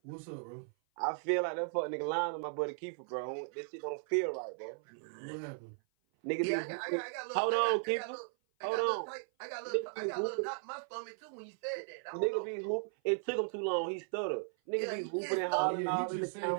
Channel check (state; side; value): silent; left; 53 dB below the other